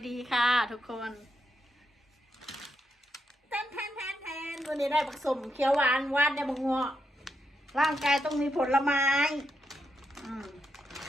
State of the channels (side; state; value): both; normal; correlation 0.82